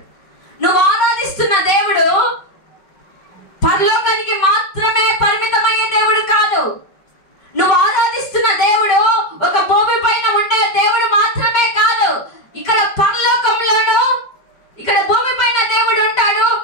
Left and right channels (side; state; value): right; late; 5.4 ms